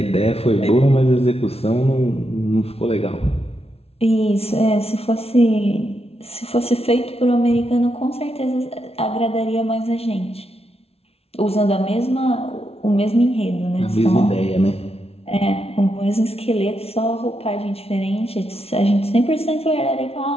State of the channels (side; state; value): right; late; 0.30 ms